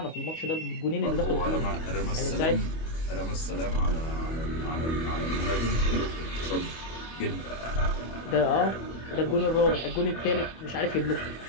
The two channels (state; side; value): late; right; 25 ms